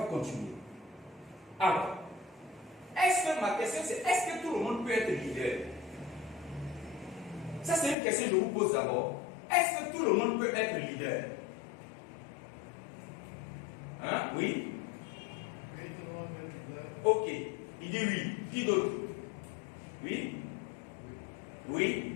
continuer. Alors, ma question c'est, est-ce que tout le monde peut être leader? Ça c'est une question que je vous pose d'abord. Est-ce que tout le monde peut être leader? Hein? Oui? Oui, tout le monde est leader. Ok. Il dit oui. Qui d'autre? Oui?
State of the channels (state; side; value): drops out; right; at 8.0 s